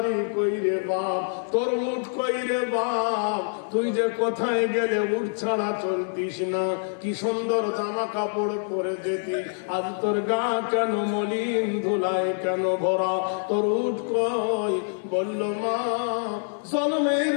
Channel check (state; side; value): silent; right; 61 dB below the other